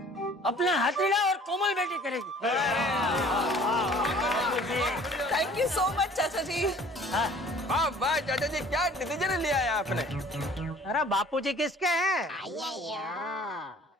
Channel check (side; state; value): both; normal; correlation 0.51